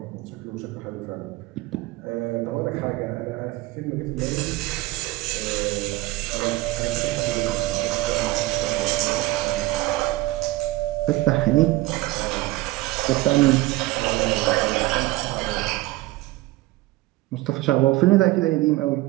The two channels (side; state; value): left; quieter; 19.1 dB